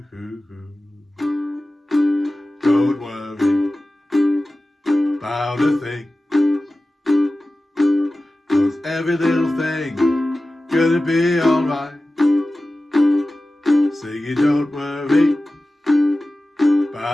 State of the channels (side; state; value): both; normal; correlation 0.96